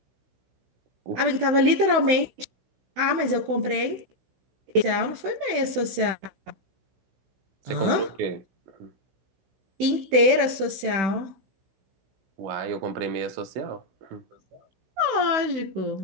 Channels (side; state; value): left; late; 16 ms